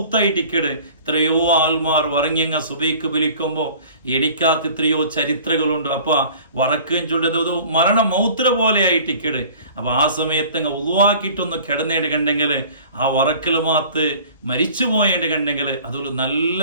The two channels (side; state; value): both; inverted; correlation -0.46